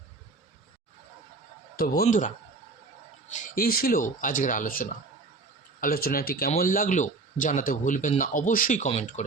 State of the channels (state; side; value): quieter; left; 3.8 dB